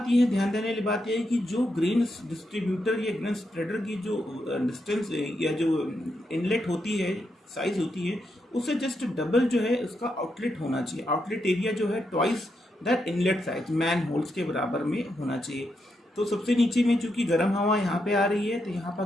यह है, ध्यान देने वाली बात यह है कि जो ग्रेन डिस्ट्रीब्यूटर या ग्रेन स्प्रेडर की जो डिस्टेंस या जो इनलेट होती है, साइज होती है, उससे जस्ट डबल जो है उसका आउटलेट होना चाहिए। आउटलेट एरिया जो है twice that inlet size, man holes के बराबर में होना चाहिए। तो सबसे नीचे में चूंकि गर्म हवा यहाँ पे आ रही है तो यहाँ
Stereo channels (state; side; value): normal; both; correlation 0.82